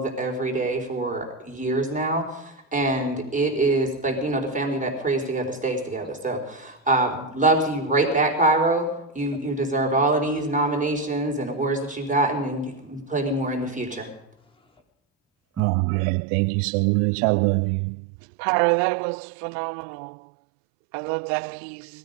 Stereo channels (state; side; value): drops out; left; at 15.6 s